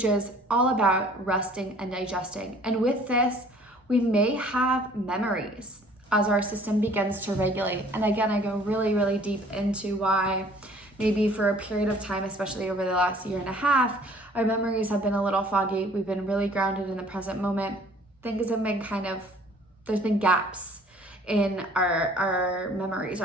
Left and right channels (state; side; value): normal; both; correlation 0.54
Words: is all about resting and digesting. And with this, we may have memories as our system begins to regulate. And again, I go really, really deep into why maybe for a period of time, especially over the last year and a half, our memories have been a little foggy. We've been really grounded in the present moment. Things have been there's been gaps in our memories,